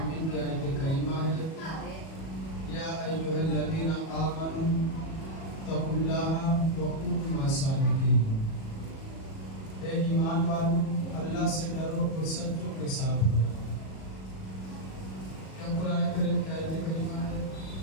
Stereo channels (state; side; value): late; right; 37 ms